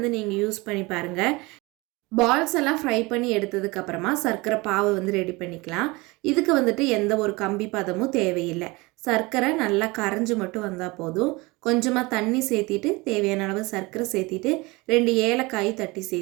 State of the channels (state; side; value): quieter; left; 24.0 dB